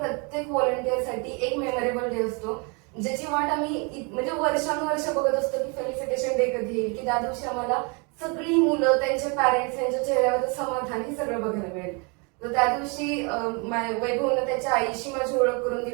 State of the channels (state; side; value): quieter; left; 32.6 dB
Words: व्हॉलंटिअरसाठी एक मेमोरेबल डे असतो, ज्याची वाट आम्ही म्हणजे वर्षानुवर्ष बघत असतो की फेलिसिटेशन डे कधी येईल, की त्या दिवशी आम्हाला सगळी मुलं, त्यांचे पॅरेंट्स, त्यांच्या चेहऱ्यावर समाधान हे सगळं बघायला मिळेल. तर त्या दिवशी वैभवनं त्याच्या आईशी माझी ओळख करून